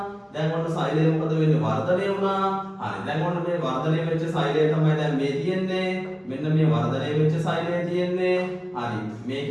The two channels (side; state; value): both; identical; correlation 1.00